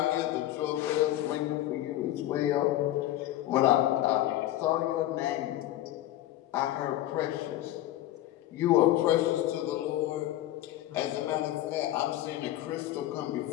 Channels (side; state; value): right; quieter; 14.3 dB